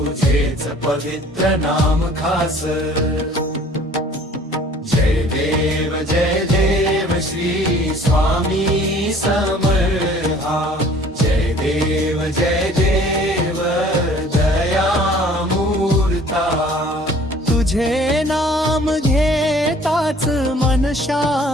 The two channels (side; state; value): both; normal; correlation 0.52